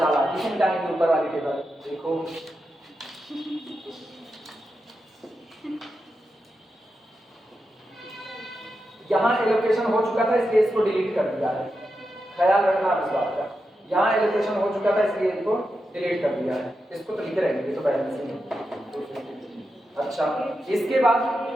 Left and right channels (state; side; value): normal; both; correlation 0.88